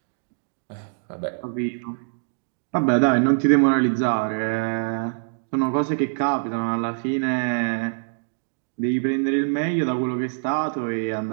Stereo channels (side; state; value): left; silent; digital silence